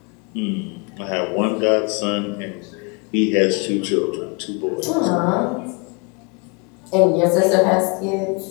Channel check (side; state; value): right; quieter; 32.3 dB